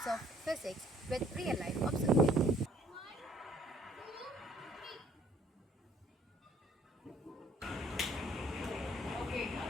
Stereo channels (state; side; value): normal; both; correlation 0.60